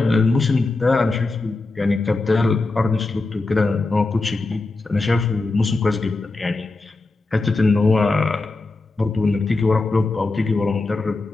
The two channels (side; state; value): right; quieter; 3.4 dB